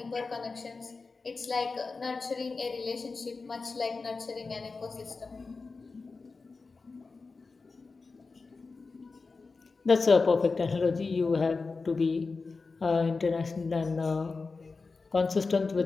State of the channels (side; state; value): right; quieter; 4.2 dB